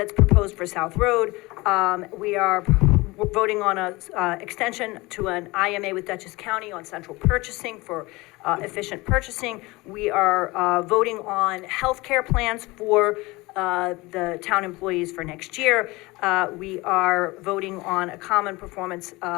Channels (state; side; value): quieter; right; 22.3 dB